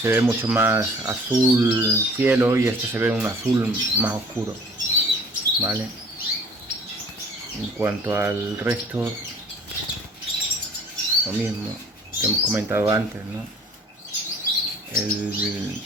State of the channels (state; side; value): normal; both; correlation 0.51